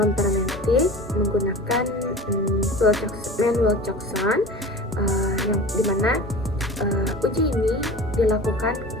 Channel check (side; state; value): both; normal; correlation 0.36